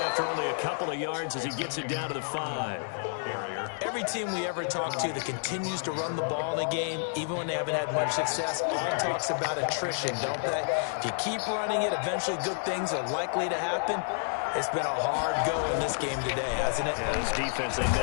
only a couple of yards as he gets it down to the 5. Every team we ever talk to that continues to run the ball in a game, even when they haven't had much success, all talks about attrition, don't they? If you keep running it, eventually good things are likely to happen. It's been a hard go in this game today, hasn't it? Yeah, this defense, they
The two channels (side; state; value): right; silent; digital silence